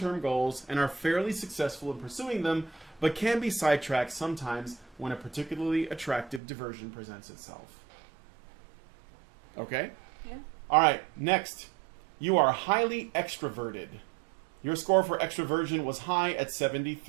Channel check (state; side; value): drops out; left; at 6.4 s